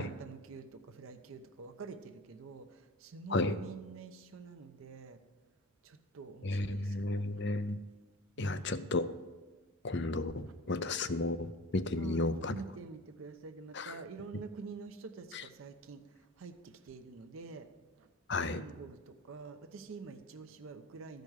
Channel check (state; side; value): normal; both; correlation 0.37